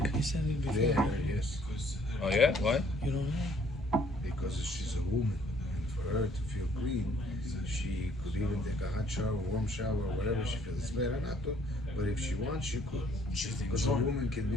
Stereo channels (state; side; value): normal; both; correlation 0.62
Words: He said it before. Yeah, yes. Oh yeah? Why? You don't know? Because she's a woman, and for her to feel clean, she could even take a hot shower, warm shower, whatever she feels. It's better not to, but if she wants, she could. Because a woman can be